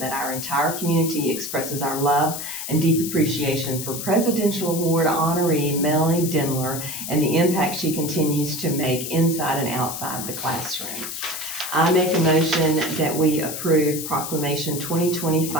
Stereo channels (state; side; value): noise; left; hiss, 6 dB below the sound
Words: our entire community expresses our love and deep appreciation for Presidential Award honoree Melanie Dindler and the impact she continues to make inside and outside the classroom. I make a motion that we approve Proclamation